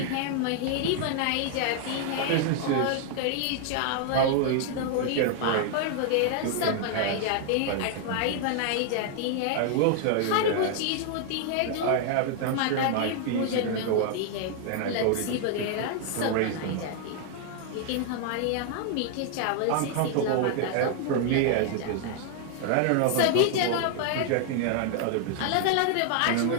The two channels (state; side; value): different; both; correlation 0.00